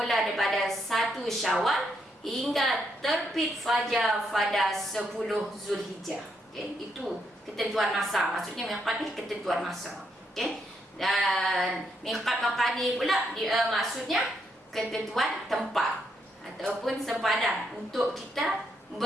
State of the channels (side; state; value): both; normal; correlation 0.77